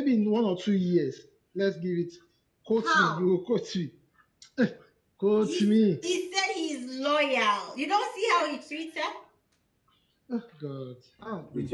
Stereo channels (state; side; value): identical; both; correlation 1.00